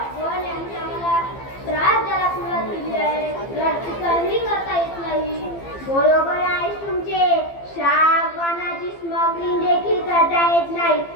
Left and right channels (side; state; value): right; late; 15 ms